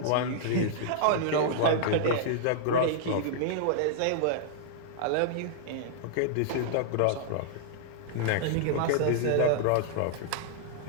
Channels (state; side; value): different; both; correlation -0.01